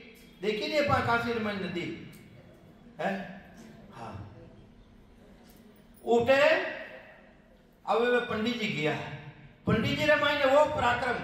देखी नहीं अपन काशी रमाई नदी है। हाँ उठे अब वे पंडित जी गया, पंडित जी रमाई ने वो पराक्रम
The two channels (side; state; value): both; identical; correlation 1.00